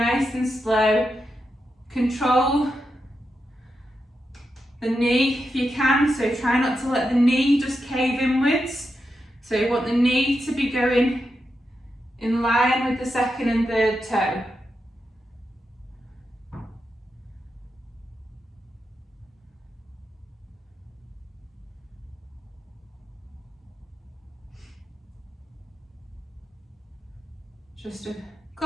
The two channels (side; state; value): both; normal; correlation 0.87